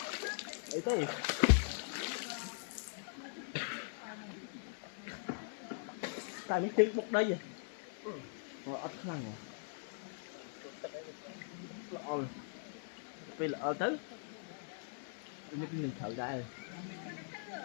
ấy thế tại mấy chân bục đây vậy rồi ớt khăn rồi lọ vì lọ tới những cái mình thở ra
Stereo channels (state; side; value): silent; right; 50 dB below the other